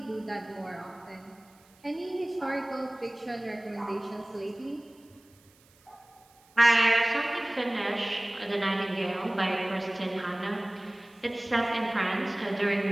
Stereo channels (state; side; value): noise; right; hiss, 30 dB below the sound